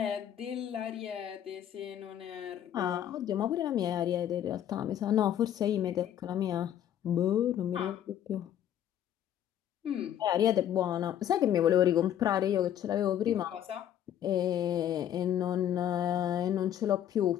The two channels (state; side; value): quieter; right; 10.6 dB